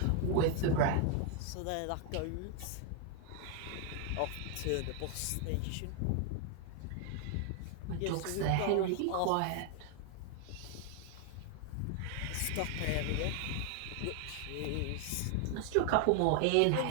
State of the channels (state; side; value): different; both; correlation 0.01